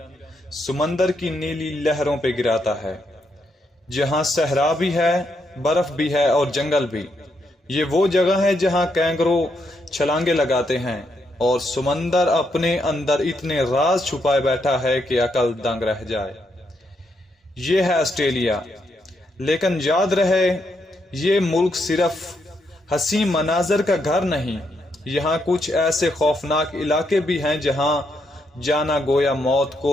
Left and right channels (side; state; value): both; normal; correlation 0.78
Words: سمندر کی نیلی لہروں پہ گراتا ہے، جہاں صحرا بھی ہے، برف بھی ہے اور جنگل بھی۔ یہ وہ جگہ ہے جہاں کینگرو چھلانگے لگاتے ہیں اور سمندر اپنے اندر اتنے راز چھپائے بیٹھا ہے کہ عقل دنگ رہ جائے۔ یہ ہے آسٹریلیا، لیکن یاد رہے یہ ملک صرف حسین مناظر کا گھر نہیں، یہاں کچھ ایسے خوفناک علاقے بھی ہیں جہاں جانا گویا موت